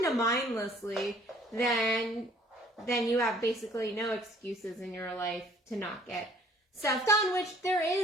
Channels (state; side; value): normal; both; correlation 0.56